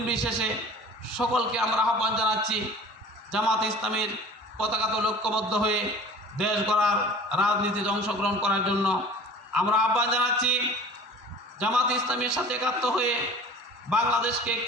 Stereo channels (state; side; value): normal; both; correlation 0.43